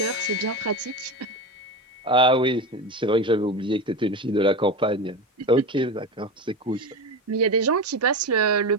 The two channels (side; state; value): both; normal; correlation 0.22